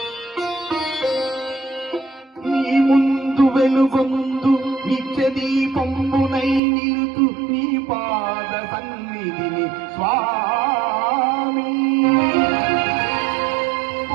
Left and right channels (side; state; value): left; drops out; at 6.6 s